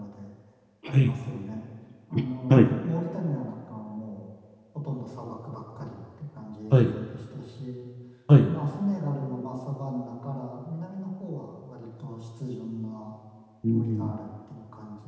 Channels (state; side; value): identical; both; correlation 1.00